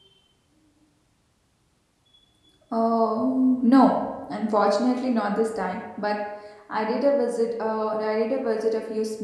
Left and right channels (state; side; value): identical; both; correlation 1.00